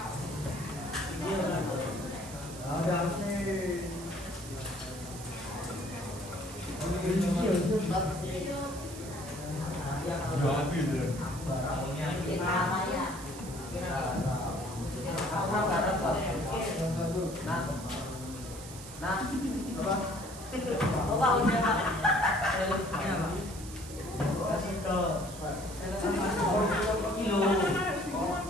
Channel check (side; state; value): right; noise; hiss, 14 dB below the sound